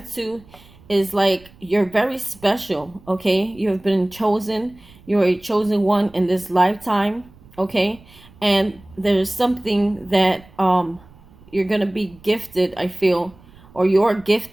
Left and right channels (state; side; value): noise; right; rumble, 25 dB below the sound